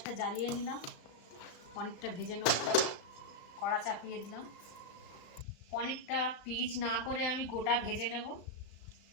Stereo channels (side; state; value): right; late; 35 ms